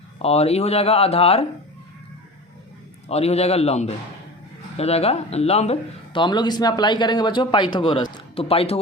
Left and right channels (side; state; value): both; normal; correlation 0.34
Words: और ये हो जाएगा आधार और ये हो जाएगा लंब, हो जाएगा लंब। तो हम लोग इसमें अप्लाई करेंगे बच्चों पाइथागोरस। तो